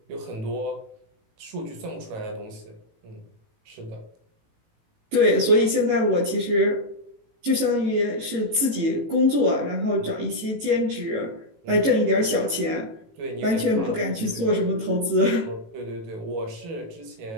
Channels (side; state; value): left; late; 18 ms